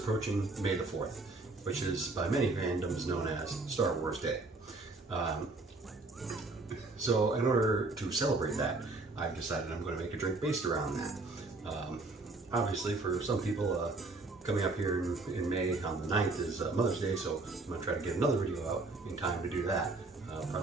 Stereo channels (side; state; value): left; quieter; 3.3 dB